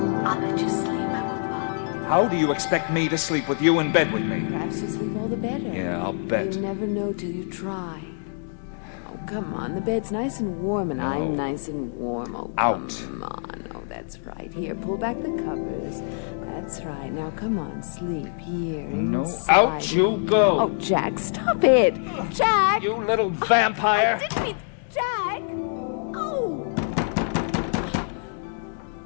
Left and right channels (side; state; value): right; silent; digital silence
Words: I'll let you sleep. I won't bother you. How do you expect me to sleep with you in bed with me? Perhaps you sleep all the better. Yeah, I'll bet. You never know till you try. Oh, come on. The bed's nice and warm, and I'm nice and warm. Oh, Out. come on. Oh, that's right. Here, pull back the covers. That's right. Now, come on, sleep here inside. Out you go! Oh, Jack, stop it! Jack! You little vampire! I didn't mean... Jack! Oh!